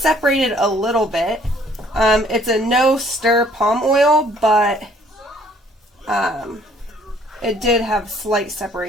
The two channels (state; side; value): normal; both; correlation 0.60